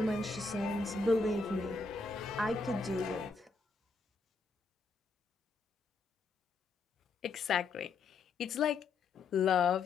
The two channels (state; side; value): quieter; right; 4.2 dB